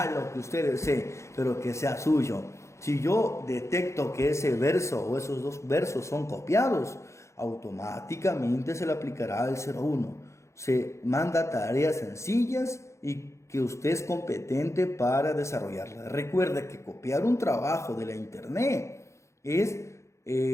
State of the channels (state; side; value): late; right; 0.14 ms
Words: lo que usted desee, pero que sea suyo. Si yo detecto que ese verso o esos 2 versos son copiados, automáticamente se le aplicará el 01. Se manda tareas sencillas y que usted es competente para desarrollarlas. Recuerde que copiar un trabajo de la internet es